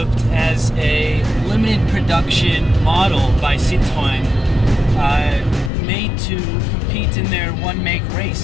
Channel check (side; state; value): right; drops out; at 5.7 s